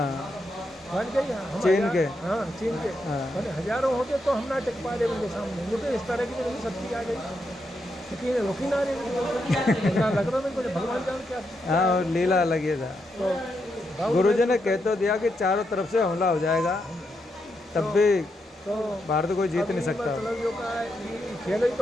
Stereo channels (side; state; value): both; normal; correlation 0.82